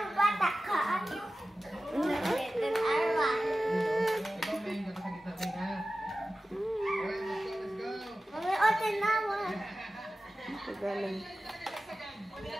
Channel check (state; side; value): normal; both; correlation 0.95